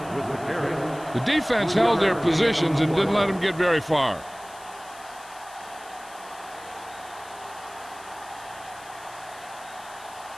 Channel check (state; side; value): noise; left; hiss, 20 dB below the sound